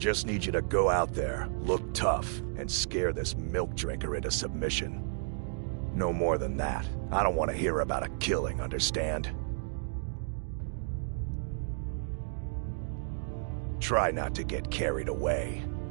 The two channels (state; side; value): silent; left; digital silence